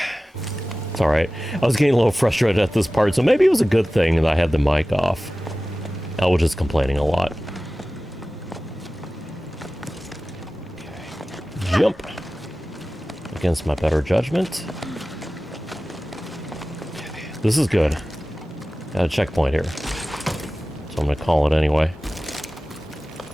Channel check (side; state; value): both; normal; correlation 0.96